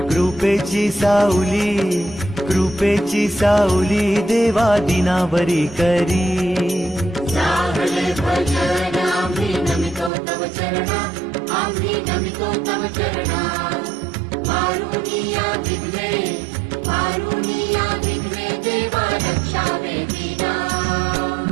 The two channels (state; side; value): drops out; left; at 10.1 s